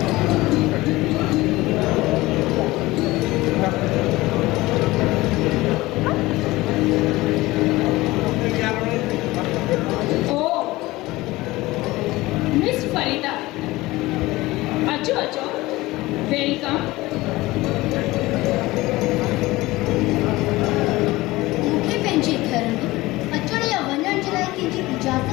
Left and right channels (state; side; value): quieter; right; 19.5 dB